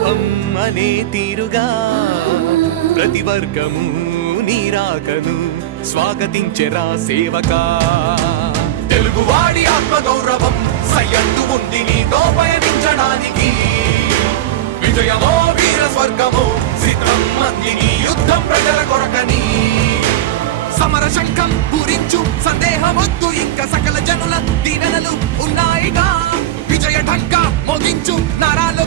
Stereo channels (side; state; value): left; quieter; 13.6 dB